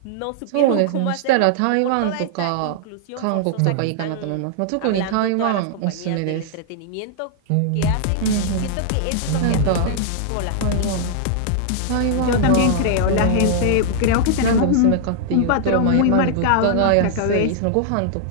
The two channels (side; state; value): both; different; correlation -0.01